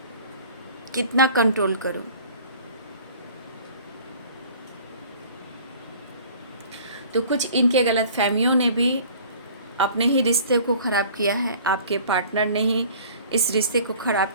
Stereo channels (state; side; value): inverted; both; correlation -0.48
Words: कितना कंट्रोल करूं। तो कुछ इनके गलत फहमियों ने भी अपने ही रिश्ते को ख़राब किया है, आपके पार्टनर ने ही इस रिश्ते को